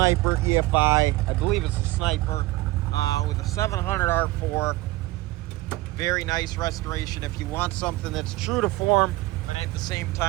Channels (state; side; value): quieter; left; 18.9 dB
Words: EFI. I believe it's a Sniper with a 700 R4. Very nice restoration. If you want something that's true to form, but at the same